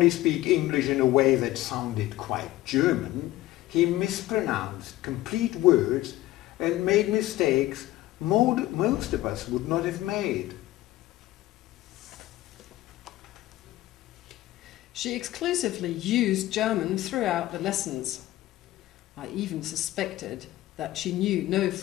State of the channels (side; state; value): right; quieter; 16.0 dB